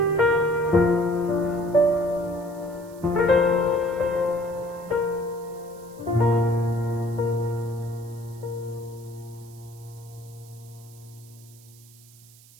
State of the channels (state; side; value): noise; right; hiss, 24 dB below the sound